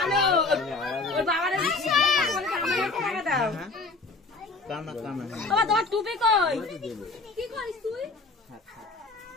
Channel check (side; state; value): right; quieter; 3.6 dB